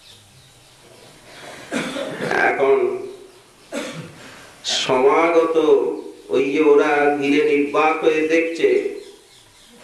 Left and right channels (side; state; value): both; identical; correlation 1.00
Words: এখন সমাগত ওই যে ওরা ঘিরে নির্বাক হয়ে দেখছে।